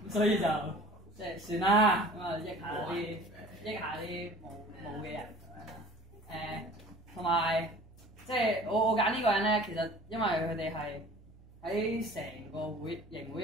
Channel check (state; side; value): noise; right; hum, 23 dB below the sound